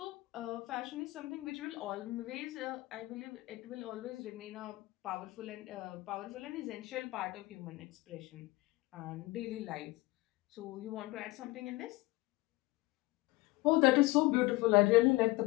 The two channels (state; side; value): quieter; right; 21.3 dB